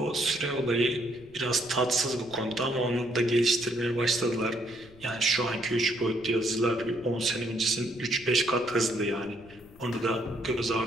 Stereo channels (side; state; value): left; noise; rumble, 23 dB below the sound